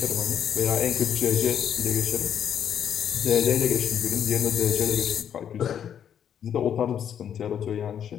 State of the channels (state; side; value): quieter; right; 9.0 dB